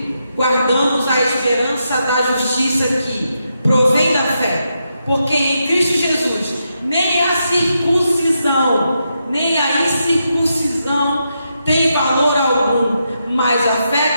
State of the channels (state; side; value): inverted; both; correlation -0.83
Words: guardamos a esperança da justiça que provém da fé, porque em Cristo Jesus nem a circuncisão, nem a incircuncisão tem valor algum, mas a